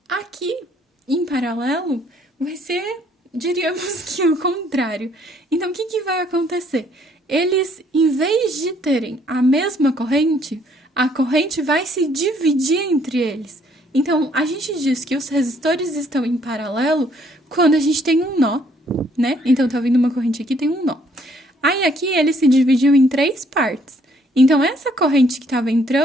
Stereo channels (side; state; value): both; normal; correlation 0.65